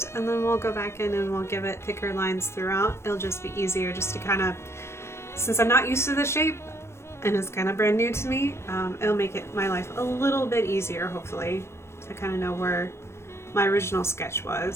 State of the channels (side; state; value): right; late; 0.13 ms